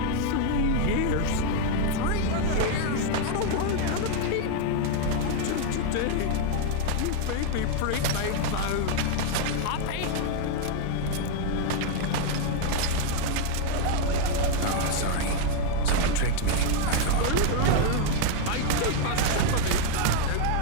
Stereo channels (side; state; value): both; different; correlation 0.00